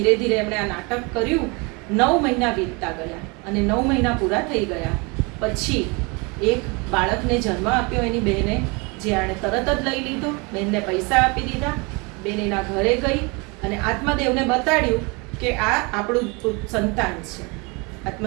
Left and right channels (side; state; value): left; quieter; 29.0 dB